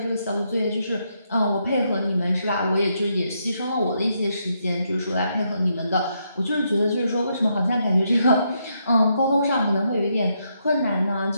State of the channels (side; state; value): both; inverted; correlation -0.78